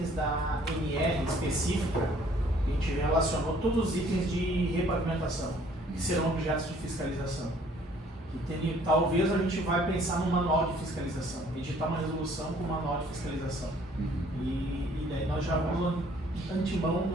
da NR específica. A gente relacionou todos os itens de repavimentação, que serão objetos de fiscalização. E talvez a gente vai pensar num manual de fiscalização, editar uma resolução com manual de fiscalização. E daí nós já vamos, antemão,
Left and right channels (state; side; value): normal; both; correlation 0.59